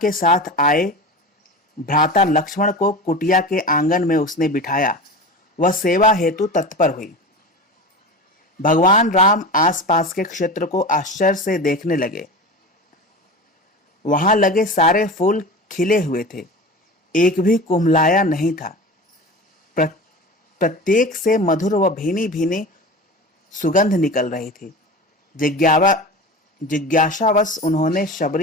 साथ आए भ्राता लक्ष्मण को कुटिया के आंगन में उसने बिठाया। वह सेवा हेतु तत्पर हुई। भगवान राम आसपास के क्षेत्र को आश्चर्य से देखने लगे। वहां लगे सारे फूल खिले हुए थे, एक भी कुम्हलाया नहीं था। प्रत्येक से मधुर व भीनी भीनी सुगंध निकल रही थी। जिज्ञासावश उन्होंने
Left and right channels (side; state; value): both; normal; correlation 0.30